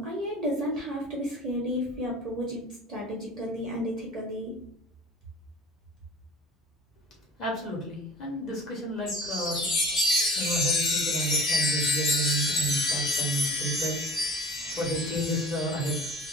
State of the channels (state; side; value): normal; both; correlation 0.41